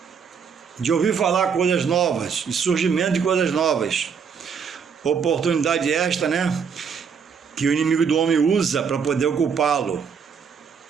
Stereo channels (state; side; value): quieter; left; 6.5 dB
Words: de ouvir falar coisas novas, de surgimento de coisas novas. Oportunidade esta, né, que o inimigo do homem usa para poder ocupá-lo